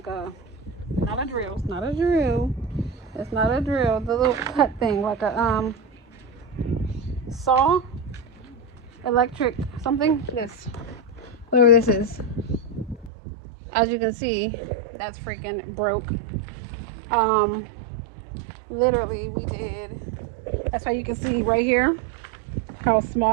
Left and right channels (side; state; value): left; drops out; at 13.1 s